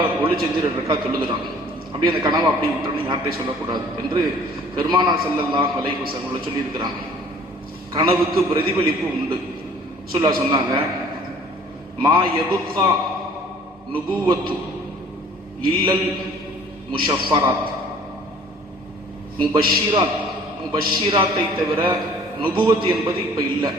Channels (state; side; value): normal; both; correlation 0.52